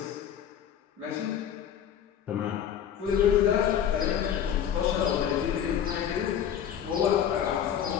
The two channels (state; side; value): quieter; right; 9.2 dB